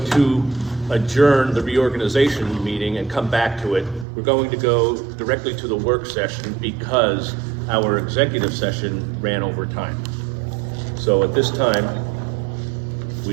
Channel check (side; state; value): left; drops out; at 4.0 s